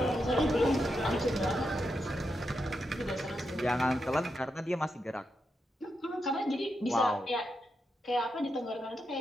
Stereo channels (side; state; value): both; normal; correlation 0.85